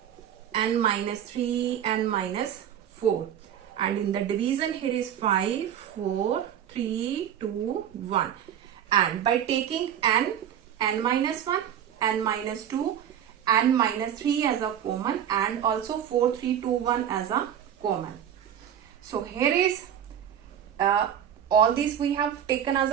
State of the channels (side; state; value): left; quieter; 9.7 dB